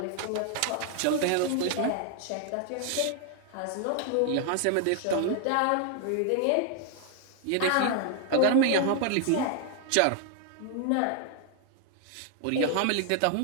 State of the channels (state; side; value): different; both; correlation 0.00